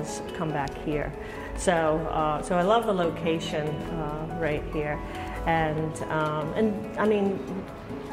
come back here. So, so I love the location right here, and I mean,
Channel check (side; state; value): both; identical; correlation 1.00